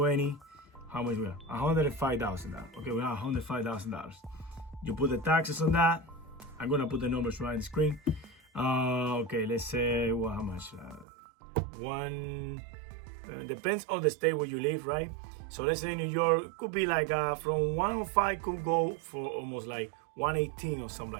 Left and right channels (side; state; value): left; drops out; at 11.1 s